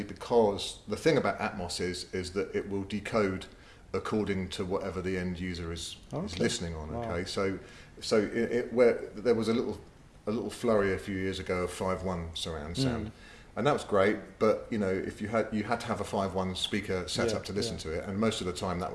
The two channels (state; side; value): identical; both; correlation 1.00